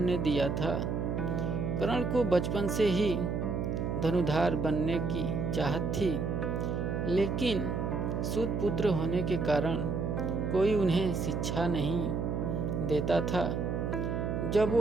ने दिया था। कर्ण को बचपन से ही धनुधार बनने की चाहत थी, लेकिन सूत पुत्र होने के कारण कोई उन्हें शिक्षा नहीं देता था। जब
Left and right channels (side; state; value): right; noise; hum, 1 dB below the sound